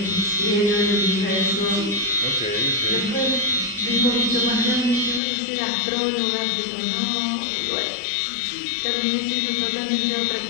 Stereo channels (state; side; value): drops out; right; at 5.2 s